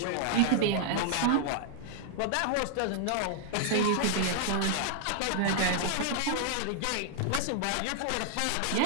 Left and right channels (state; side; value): different; both; correlation 0.00